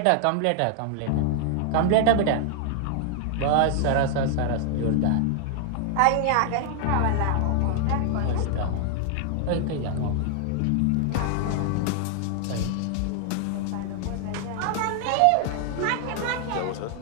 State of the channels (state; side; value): different; both; correlation 0.00